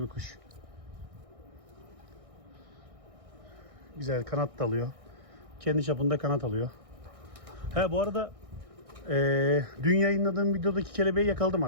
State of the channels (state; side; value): late; left; 1.6 ms